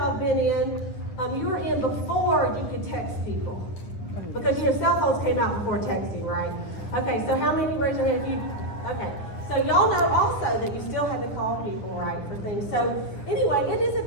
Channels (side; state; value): right; late; 9.9 ms